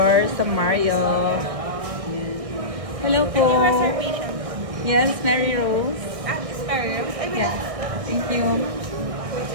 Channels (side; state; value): left; late; 1.6 ms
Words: sa Marriott. Hello po. Any reservation? Yes, Mary Rose. It's Mary Rose. I will. Yeah. Thank you.